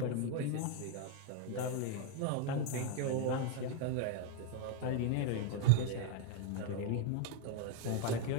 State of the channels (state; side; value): different; both; correlation 0.01